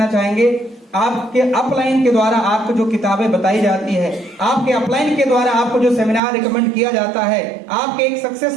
चाहेंगे, आपके अपलाइन के द्वारा आपको जो किताबें बताई जाती है, आपके अपलाइन के द्वारा आपको जो सेमिनार रिकमेंड किया जाता है, आपके एक सक्सेस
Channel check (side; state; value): left; drops out; at 6.2 s